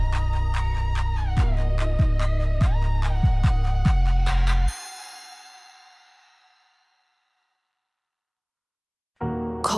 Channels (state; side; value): identical; both; correlation 1.00